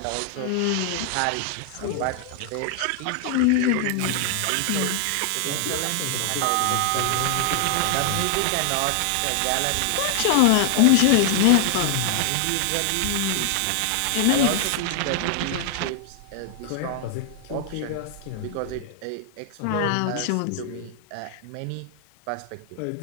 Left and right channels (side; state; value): both; different; correlation 0.00